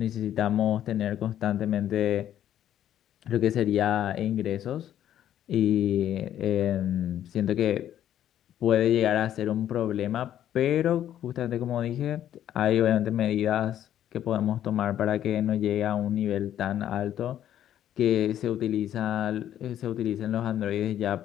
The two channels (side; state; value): right; quieter; 11.1 dB